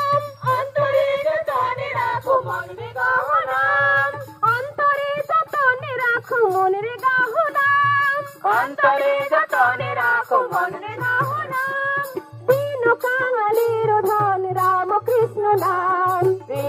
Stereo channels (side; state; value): both; identical; correlation 1.00